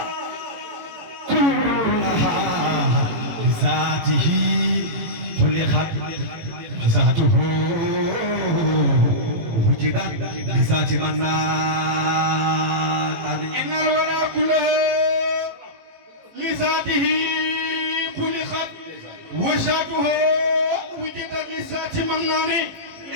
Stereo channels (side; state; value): left; late; 18 ms